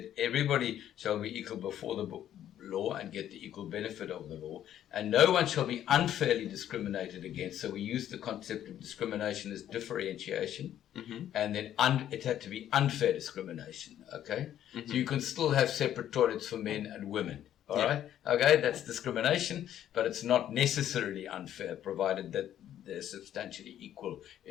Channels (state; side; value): quieter; right; 11.1 dB